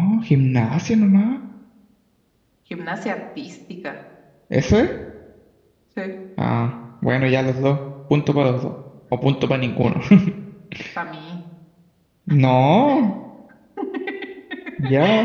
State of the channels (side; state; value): both; identical; correlation 1.00